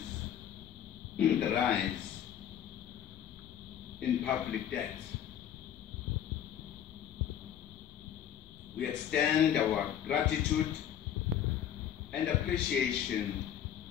the rise in public debt. We extend our gratitude and appreciation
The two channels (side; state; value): right; quieter; 9.7 dB